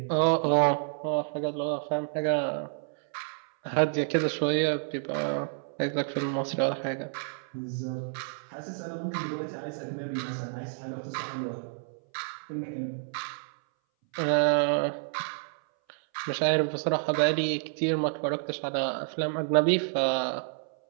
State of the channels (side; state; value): left; silent; 58 dB below the other